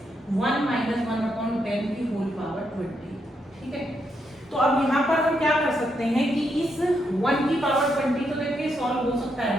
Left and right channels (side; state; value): both; normal; correlation 0.80